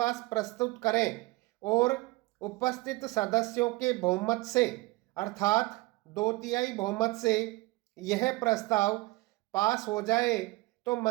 प्रस्तुत करें और उपस्थित सदस्यों के बहुमत से अर्थात 2/3 बहुमत से यह प्रस्ताव पास हो जाए तो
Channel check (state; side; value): quieter; left; 21.5 dB